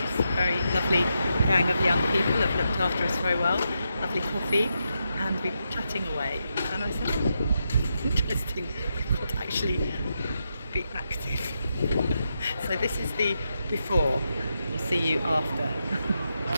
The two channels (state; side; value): inverted; both; correlation -0.84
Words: very lovely gang of young people have looked after us very well, lovely coffee, and we're chatting away. And I said, oh, it's interesting, we've got to actually be active. So this is the before, we'll see you after.